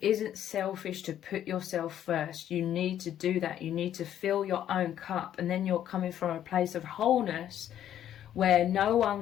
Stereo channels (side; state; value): right; quieter; 10.8 dB